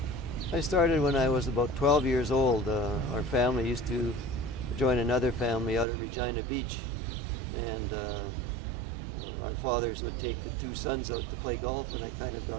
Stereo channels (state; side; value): drops out; left; at 5.9 s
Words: I started when I was about 12 years old. Our family used to join another family out at Regina Beach, and our fathers would take the two sons out to play golf, and I kind of